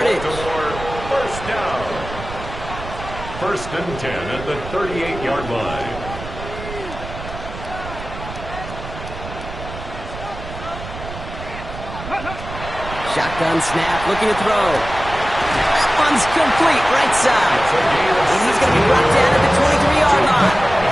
First down. 1st and 10 at the 38-yard line. Shotgun snap, looking to throw. That one's complete, right side. And he's going to be brought down at the 23-yard line.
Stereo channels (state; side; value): noise; right; rumble, 11 dB below the sound